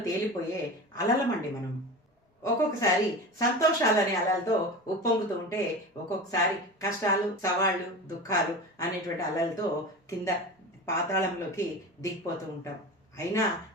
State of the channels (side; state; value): both; normal; correlation 0.30